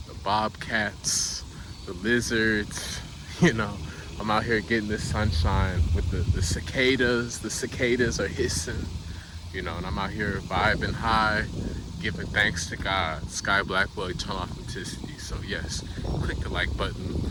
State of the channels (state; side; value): identical; both; correlation 1.00